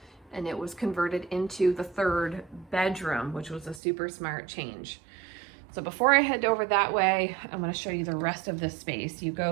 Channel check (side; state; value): left; drops out; at 3.8 s